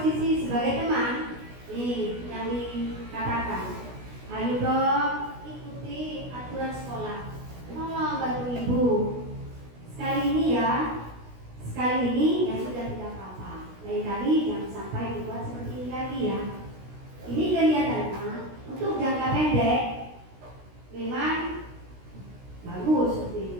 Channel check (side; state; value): left; late; 16 ms